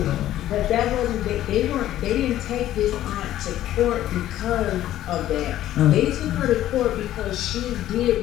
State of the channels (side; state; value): right; quieter; 13.2 dB